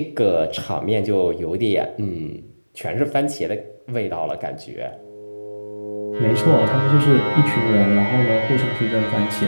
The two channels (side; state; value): both; inverted; correlation -1.00